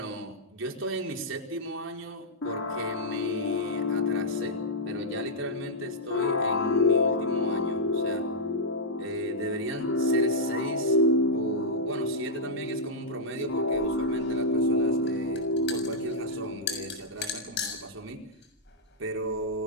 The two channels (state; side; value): normal; both; correlation -0.08